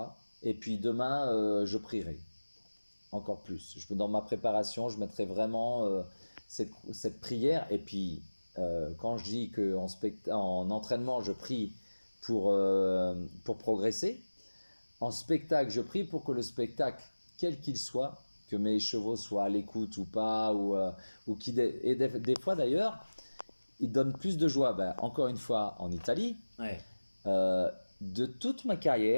Et puis demain, je prierai encore plus. Dans ma préparation, je mettrai vraiment cette prière. Et puis, quand je dis qu'en entraînement, je prie pour progresser, en spectacle, je prie pour que le spectacle, quel qu'il soit, que mes chevaux soient à l'écoute ou pas, ou et des fois d'ailleurs, ils donnent plus de joie. Ben, encore une fois, en Italie, Ouais. De toute ma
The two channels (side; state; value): both; inverted; correlation -1.00